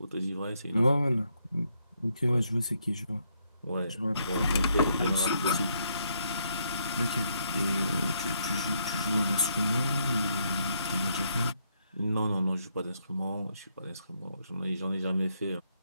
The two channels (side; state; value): both; inverted; correlation -0.75